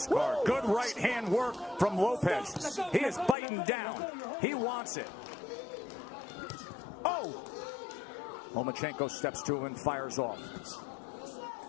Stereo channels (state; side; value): drops out; right; at 3.4 s